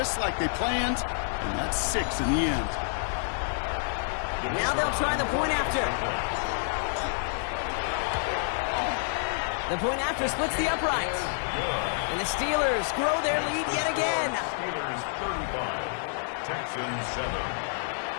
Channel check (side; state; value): right; silent; 59 dB below the other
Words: like they planned, and that's 6 in the end. Now they'll try the point after. The point after splits the uprights. And the Steelers grow their lead yet again. Steelers 35, Texans 7.